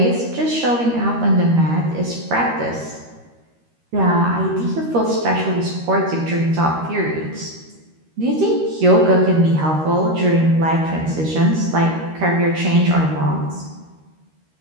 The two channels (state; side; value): late; left; 13 ms